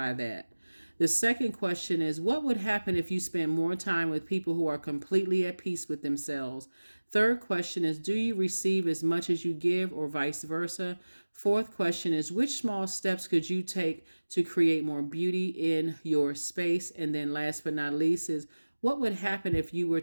that? The second question is, what would happen if you spend more time with people who are completely at peace with themselves? Third question is, do you receive as much as you give, or vice versa? Fourth question is, which small steps could you take to create more beauty in your space? And then last but not least is, what would happen if you were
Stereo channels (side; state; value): both; inverted; correlation -1.00